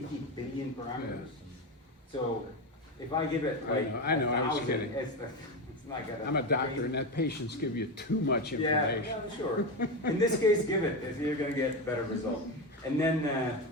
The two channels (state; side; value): normal; both; correlation 0.16